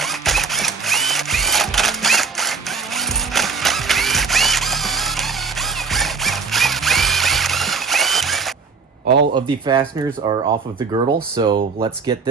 All of the fasteners are off of the girdle, so let's get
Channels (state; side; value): quieter; left; 5.0 dB